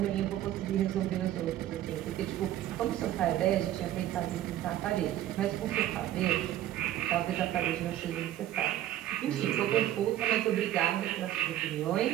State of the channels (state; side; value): quieter; left; 12.9 dB